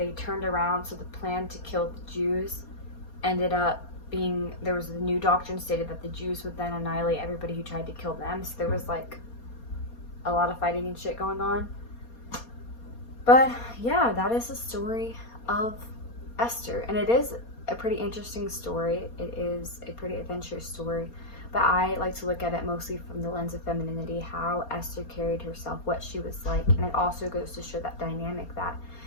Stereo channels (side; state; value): right; late; 4.3 ms